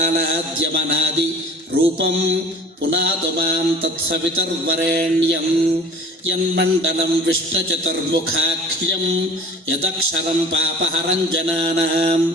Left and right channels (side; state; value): both; normal; correlation 0.44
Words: రూపం పునాతు మాం తత్సవితుర్వరేణ్యం యన్మండలం విష్ణుచతుర్ముఖాఖ్యం యదక్షరం పాపహరం జనానాం